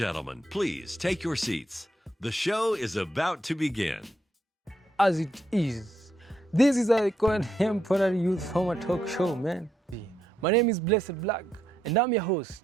please take your seats. The show is about to begin. As it is. This is a contemporary youth format talk show, man. My name is Blak, and I'm your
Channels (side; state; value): both; normal; correlation 0.78